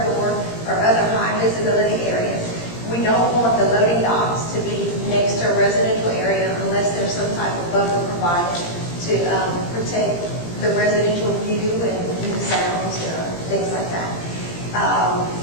or other high visibility areas. We don't want the loading docks to be next to a residential area unless there's some type of buffer provided to protect the residential view and sounds, things like that.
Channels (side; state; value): right; late; 17 ms